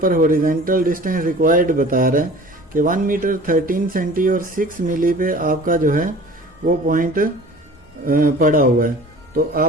हॉरिजेंटल डिस्टेंस रिक्वायर्ड बता रहा है कि 1 मीटर 13 सेंटी और 6 मिली पे आपका जो है वो पॉइंट पड़ा हुआ है। तो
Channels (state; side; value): normal; both; correlation 0.44